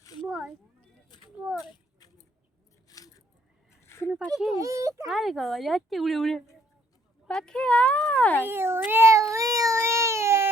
শুনো পাখি আরে বাবা যাচ্ছে উড়ে উড়ে পাখি আয়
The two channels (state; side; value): normal; both; correlation 0.66